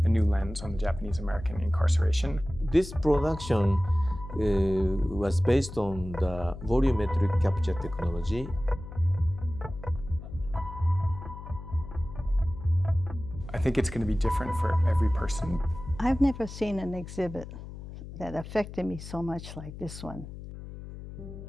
a new lens on the Japanese American incarceration. This production was based on the volumetric capture technology. I think it's going to be different for every person. I've never seen an exhibit that affected me so much like this one.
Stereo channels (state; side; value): noise; left; hum, 12 dB below the sound